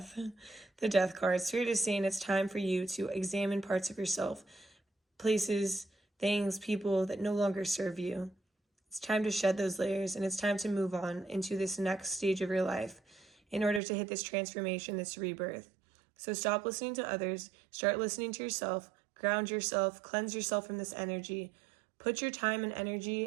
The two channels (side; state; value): left; drops out; at 13.8 s